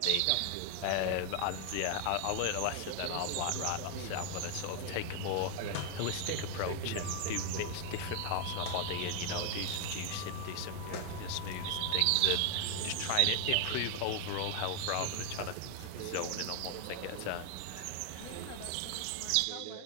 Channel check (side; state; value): both; different; correlation 0.00